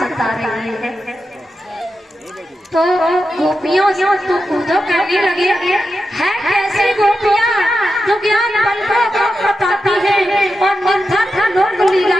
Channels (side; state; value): both; normal; correlation 0.89